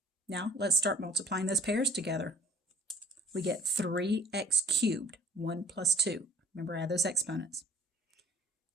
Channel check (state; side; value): normal; both; correlation 0.54